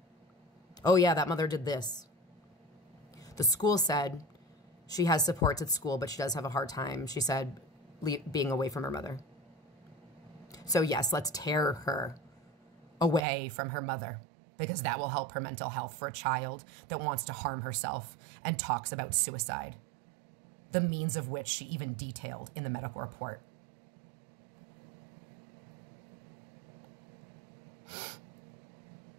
Oh yeah, that mother did this. The school said She has supports at school, but she does have a hard time, she said, being away from her mother. So yes, let's tear her away from her mother, because that will help her mental health for a child that wants to harm herself and talks about suicide, the means of which she even detailed in the medical report.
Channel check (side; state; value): left; drops out; at 13.2 s